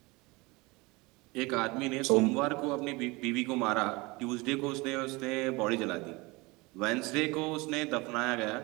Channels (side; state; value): left; quieter; 24.2 dB